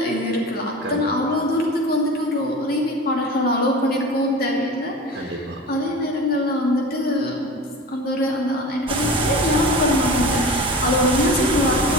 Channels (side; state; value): both; normal; correlation 0.34